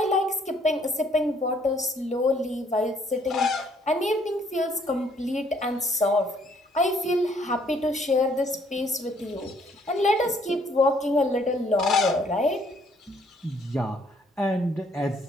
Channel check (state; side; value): normal; both; correlation 0.64